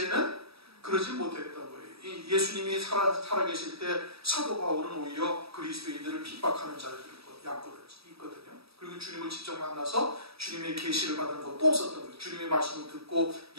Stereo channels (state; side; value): late; left; 0.77 ms